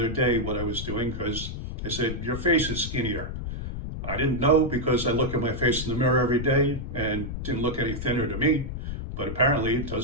day what I was doing because I said, your face is skinnier. I didn't know because I look at my face in the mirror every day and didn't look any thinner to me, but apparently it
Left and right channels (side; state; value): left; noise; rumble, 6 dB below the sound